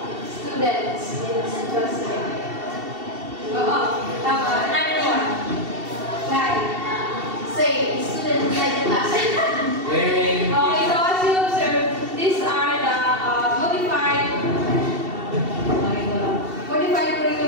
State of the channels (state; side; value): late; left; 2.7 ms